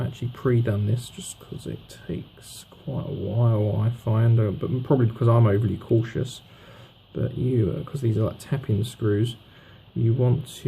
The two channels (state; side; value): identical; both; correlation 1.00